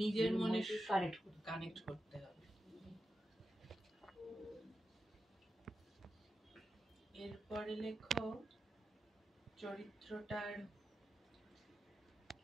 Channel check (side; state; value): both; normal; correlation 0.90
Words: মনের কানেক্ট করতে হবে। এরপরে লেখো চরিত্রটার